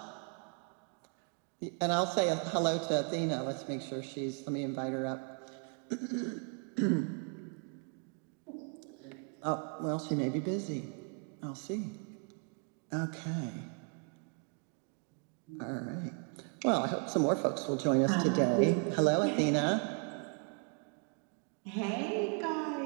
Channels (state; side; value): quieter; left; 39.3 dB